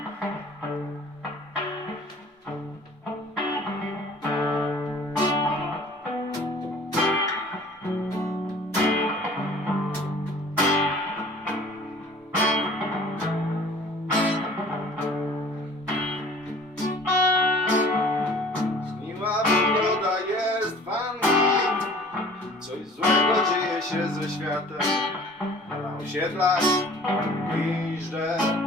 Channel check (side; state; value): both; normal; correlation 0.48